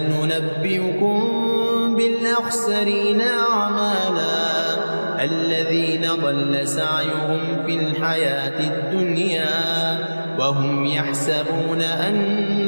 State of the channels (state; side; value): inverted; both; correlation -1.00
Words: ننبئكم بالأخسرين أعمالا الذين ضل سعيهم في الحياة الدنيا وهم يحسبون